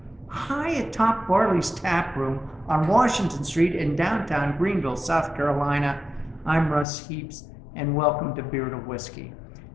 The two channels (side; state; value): right; drops out; at 6.9 s